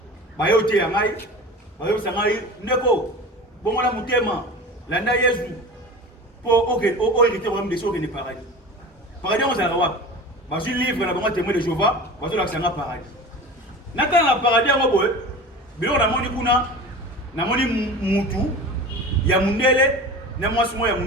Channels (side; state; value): both; normal; correlation 0.34